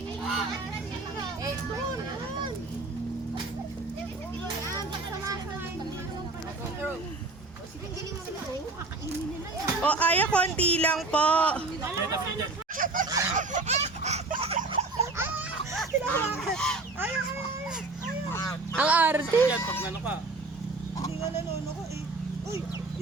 O, Aya, konti lang po. Ang arte. Yan, pag nano ka. Hindi nga nanono ko eh. Uy,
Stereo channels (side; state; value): left; quieter; 3.4 dB